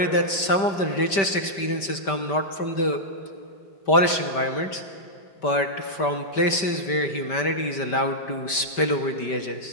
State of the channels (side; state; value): right; late; 5.1 ms